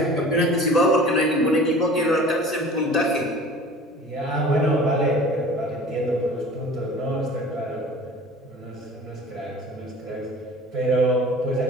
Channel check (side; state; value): both; normal; correlation 0.44